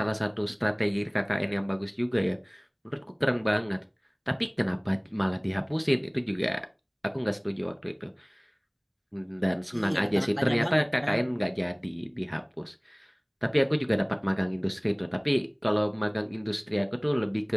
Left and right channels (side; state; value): both; identical; correlation 1.00